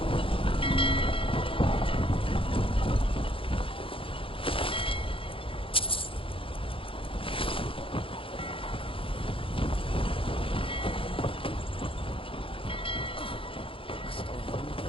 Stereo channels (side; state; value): right; late; 0.26 ms